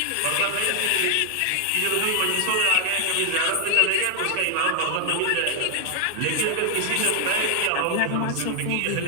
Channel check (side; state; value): both; different; correlation 0.00